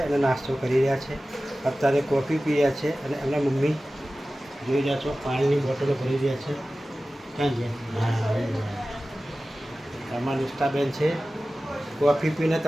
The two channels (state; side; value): normal; both; correlation 0.96